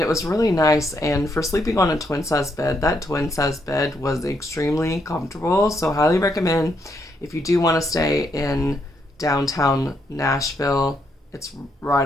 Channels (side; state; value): both; normal; correlation 0.77